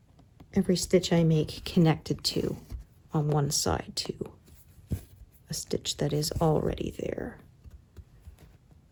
every stitch I make connected to on one side to a stitch that is already there.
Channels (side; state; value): both; identical; correlation 1.00